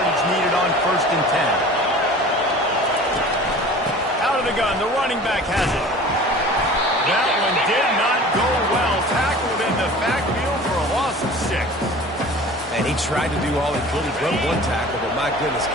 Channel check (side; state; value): both; normal; correlation 0.42